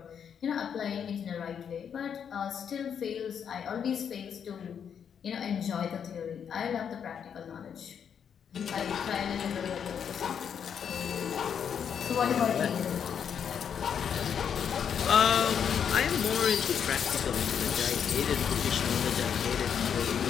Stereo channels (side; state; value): right; quieter; 7.8 dB